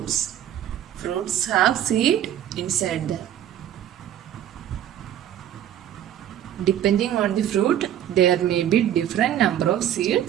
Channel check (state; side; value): quieter; left; 11.0 dB